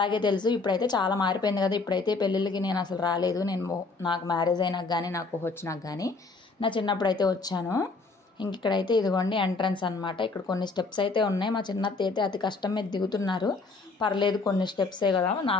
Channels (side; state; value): right; quieter; 3.9 dB